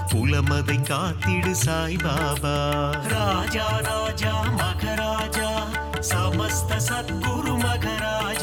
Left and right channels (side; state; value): both; identical; correlation 1.00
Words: குலமதை காத்திடு சாய்பாபா ராஜா ராஜா மகராஜா समस्त सद्गुरु